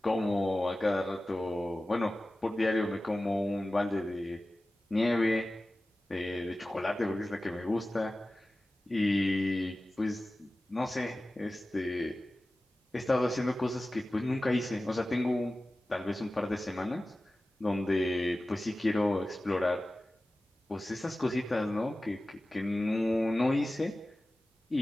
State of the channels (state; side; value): normal; both; correlation 0.96